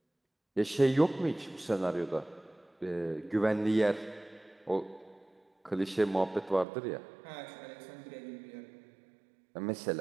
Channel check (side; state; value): left; drops out; at 6.7 s